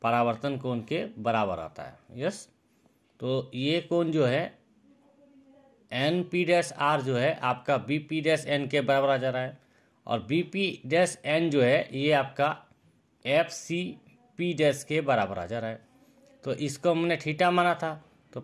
परावर्तन कोण के बराबर आता है। यस, तो ये कोण जो है एन पी डैश आर जो है आपका बी पी डैश एन के बराबर आ जा रहा है, और बी पी डैश एन जो है ये आपका एफ सी पी डैश के बराबर आ जा रहा है। तो इसको हमने थीटा माना था तो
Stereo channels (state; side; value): identical; both; correlation 1.00